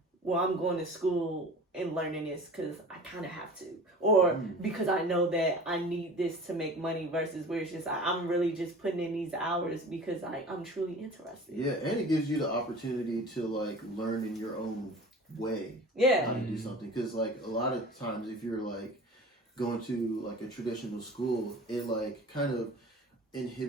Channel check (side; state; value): both; normal; correlation 0.40